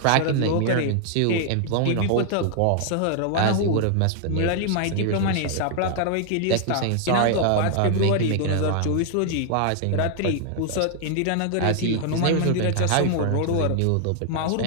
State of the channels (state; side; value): different; both; correlation 0.00